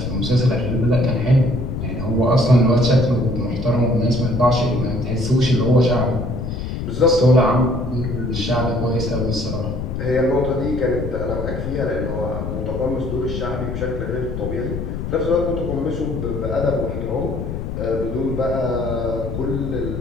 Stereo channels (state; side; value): noise; left; rumble, 5 dB below the sound